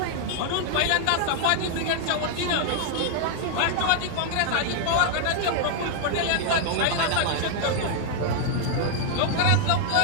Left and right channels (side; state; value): both; different; correlation 0.00